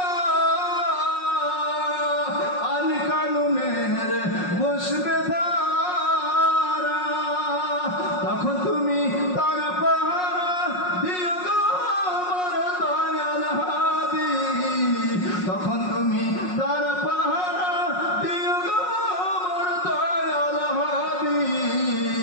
আইন কানুনের পুষ্পে দ্বারা তখন তুমি তার পাহারা দিও গো আমার দয়াল হাদি তখন তুমি তার পাহারা দিও গো আমার দয়াল হাদি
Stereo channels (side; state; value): right; late; 5.5 ms